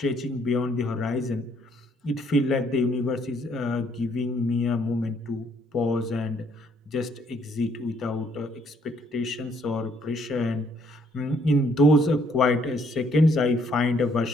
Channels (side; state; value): both; normal; correlation 0.67